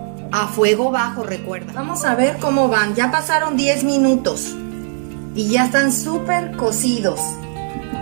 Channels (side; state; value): left; silent; 59 dB below the other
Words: a fuego bajo, recuerda. Vamos a ver cómo van. Ya pasaron 10 minutos y ya están súper cocidos.